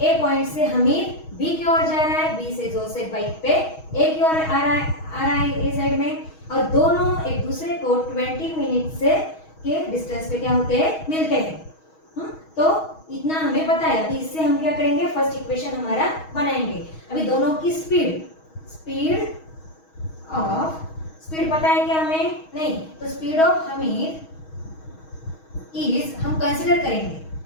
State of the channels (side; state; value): right; late; 6.3 ms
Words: ए पॉइंट से हमीद बी की ओर जा रहा है, बी से जोसेफ बाइक पे ए की ओर आ रहा है ए साइड में, और दोनों एक दूसरे को 20 मिनट से के डिस्टेंस पे क्या होते हैं, मिलते हैं। तो इतना हमें पता है। अभी इससे हम क्या करेंगे, फर्स्ट इक्वेशन हमारा बनाएंगे। अभी दोनों की स्पीड पता है क्या हमें, नहीं, तो स्पीड ऑफ हमीद इज, हम कंसिडर